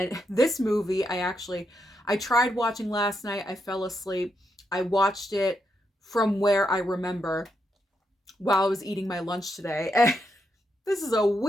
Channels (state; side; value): normal; both; correlation 0.81